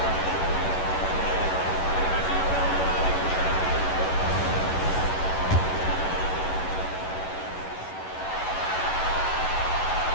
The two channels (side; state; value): right; late; 11 ms